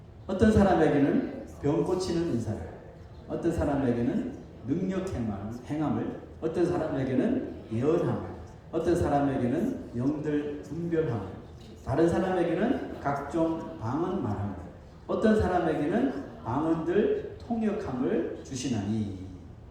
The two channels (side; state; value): both; identical; correlation 1.00